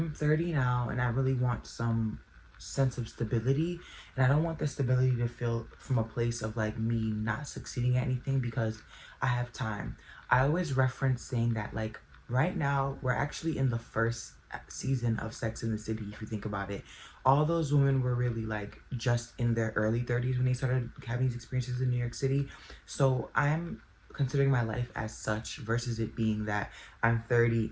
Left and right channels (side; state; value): both; identical; correlation 1.00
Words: 30 now and I really want some sense of stability. And I don't want the stability to feel from a place of like me not succeeding at anything because I have time. I always reference saying that like right now we're actually in the first season of Sex in the City, if you think about it. All those women were really like just in their early 30s when they started having these experiences in New York City. So I'm considering my life as such versus it being that I'm 30